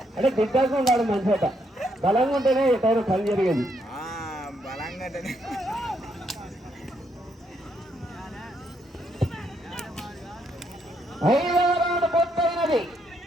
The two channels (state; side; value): normal; both; correlation 0.75